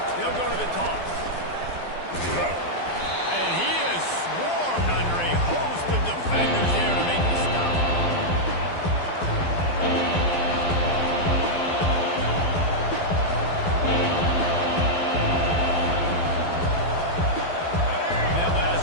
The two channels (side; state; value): right; late; 12 ms